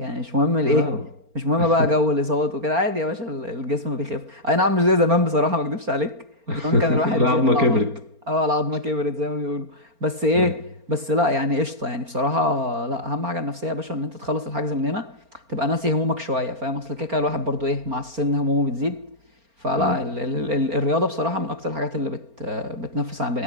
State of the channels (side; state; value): left; late; 4.4 ms